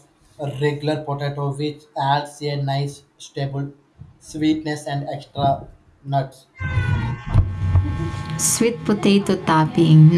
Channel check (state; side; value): identical; both; correlation 1.00